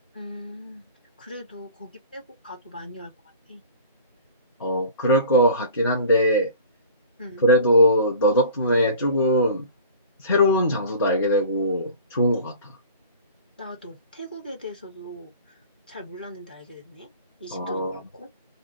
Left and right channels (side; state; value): both; inverted; correlation -0.44